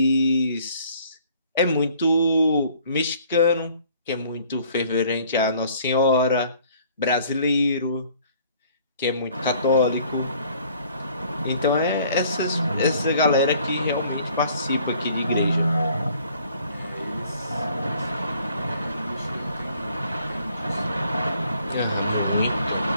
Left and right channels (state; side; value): inverted; both; correlation -0.59